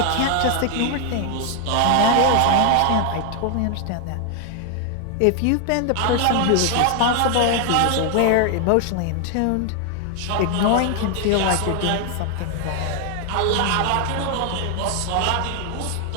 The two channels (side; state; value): both; different; correlation 0.00